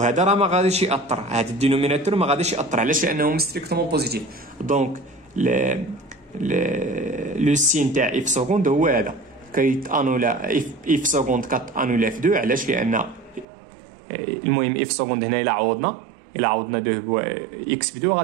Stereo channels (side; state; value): left; drops out; at 13.5 s